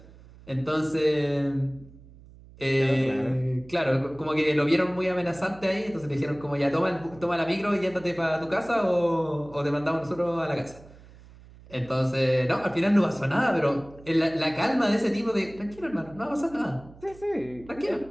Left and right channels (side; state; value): right; noise; hum, 22 dB below the sound